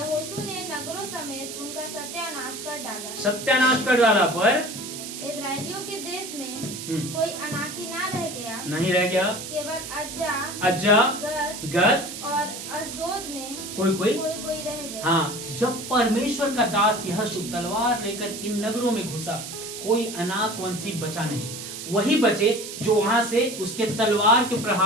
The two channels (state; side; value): noise; right; hiss, 9 dB below the sound